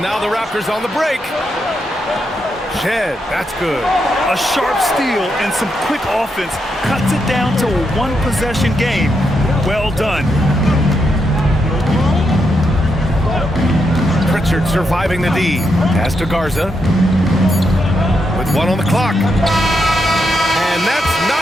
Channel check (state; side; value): normal; both; correlation 0.82